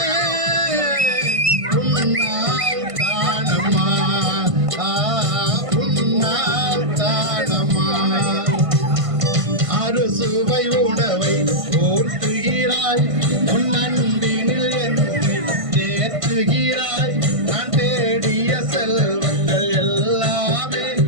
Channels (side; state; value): left; late; 1.5 ms